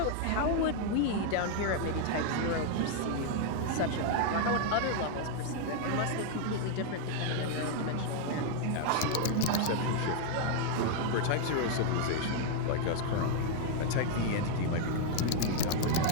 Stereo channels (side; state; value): both; different; correlation 0.00